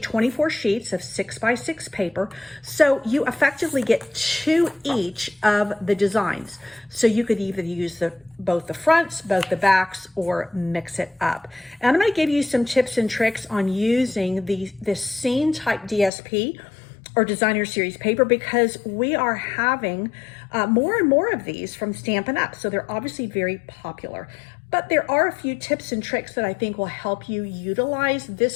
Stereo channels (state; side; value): drops out; right; at 16.1 s